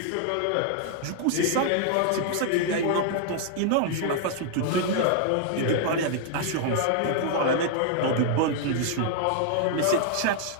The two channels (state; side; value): different; both; correlation 0.00